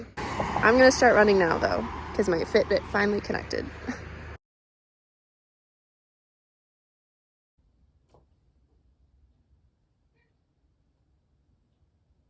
I'm gonna start running now though, because my Fitbit finally connected.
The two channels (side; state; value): both; identical; correlation 1.00